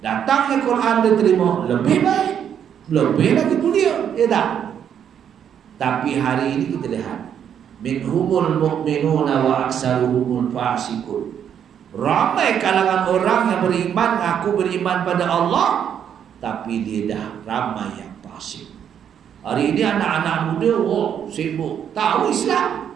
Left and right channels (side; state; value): left; quieter; 8.8 dB